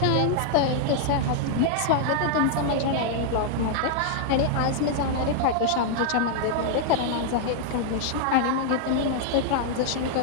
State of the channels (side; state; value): both; different; correlation 0.00